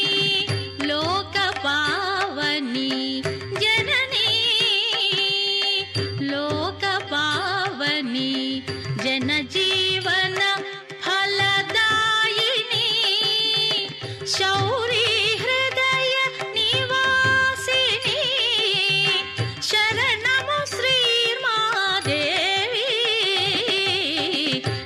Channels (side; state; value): both; identical; correlation 1.00